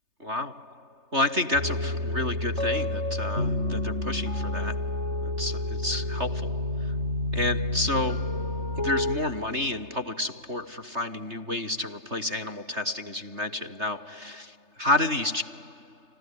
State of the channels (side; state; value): left; late; 3.3 ms